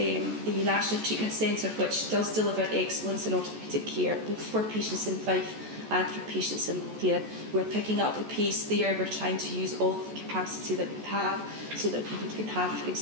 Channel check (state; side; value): late; left; 14 ms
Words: National Treatment Centre, which does deliver excellence in orthopaedic care, both for patients in Fife and for patients in Lothian. We're picking up the pace there. We're trying to use all of the capacity that we have so that people can have, for